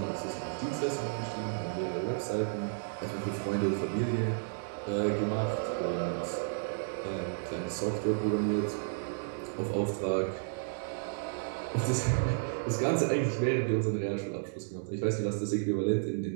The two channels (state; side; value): silent; left; digital silence